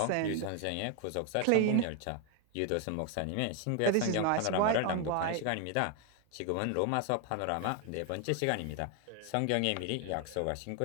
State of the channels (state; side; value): different; both; correlation 0.01